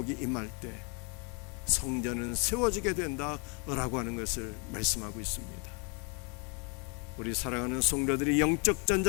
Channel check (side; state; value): right; quieter; 34.3 dB